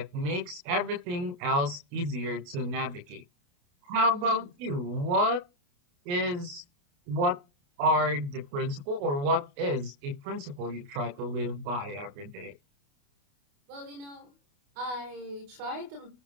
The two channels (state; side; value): late; left; 28 ms